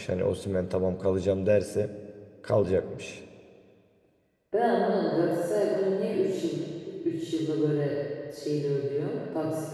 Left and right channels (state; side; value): identical; both; correlation 1.00